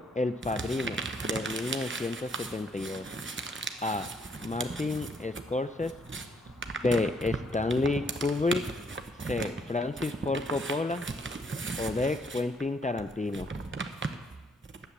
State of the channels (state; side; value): normal; both; correlation 0.69